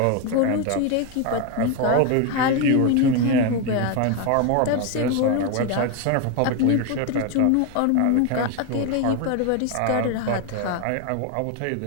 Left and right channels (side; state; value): both; different; correlation 0.02